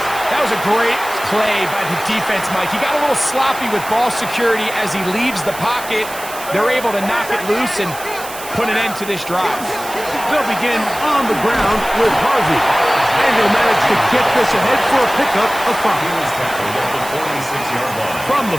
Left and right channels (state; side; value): noise; right; hiss, 13 dB below the sound